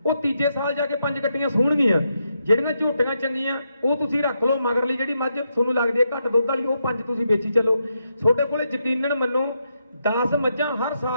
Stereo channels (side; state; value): both; inverted; correlation -0.82